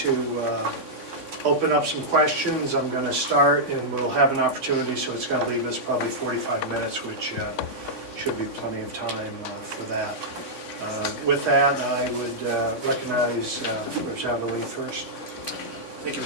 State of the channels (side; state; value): right; late; 3.6 ms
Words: open up some questions. I'm going to start, and we'll have an opportunity, so it's going to leave us probably 45 minutes, which should be plenty of time for that. With that, I would recognize Representative Lee first. Thank you,